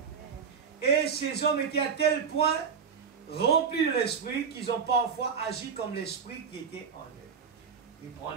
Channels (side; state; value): left; quieter; 6.4 dB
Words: Et ces hommes étaient à tel point remplis de l'esprit qu'ils ont parfois agi comme l'esprit qui était en eux. Il prend